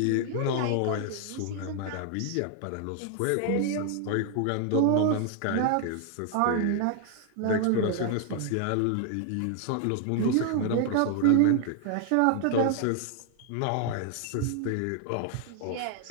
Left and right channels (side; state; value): both; different; correlation 0.00